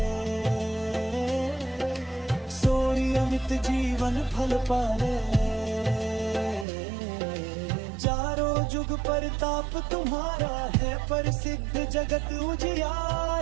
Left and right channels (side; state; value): left; drops out; at 6.7 s